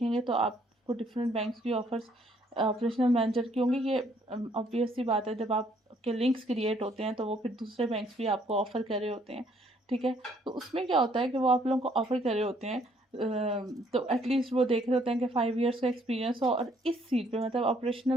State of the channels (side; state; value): both; normal; correlation 0.66